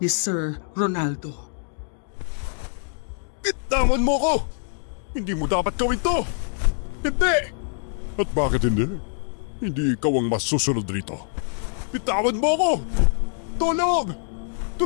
Sir Ronaldo. Bitawan mo ko! Hindi mo dapat gawin to! Hindi! At bakit hindi? Hindi ikaw ang masusunod rito. Bitawan mo ko! Tulong!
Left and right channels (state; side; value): silent; right; digital silence